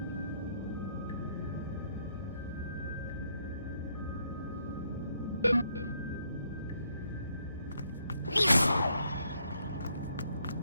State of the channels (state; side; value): inverted; both; correlation -0.72